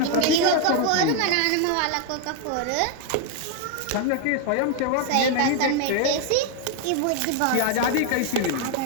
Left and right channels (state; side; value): different; both; correlation 0.01